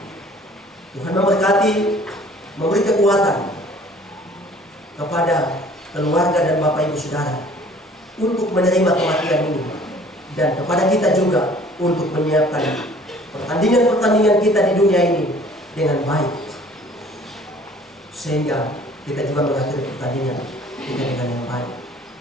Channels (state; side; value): normal; both; correlation 0.53